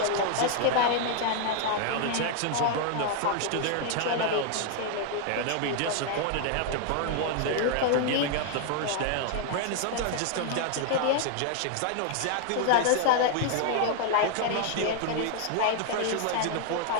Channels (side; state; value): both; different; correlation 0.00